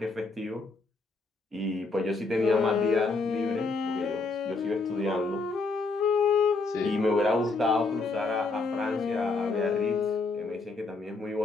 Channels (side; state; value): right; quieter; 3.7 dB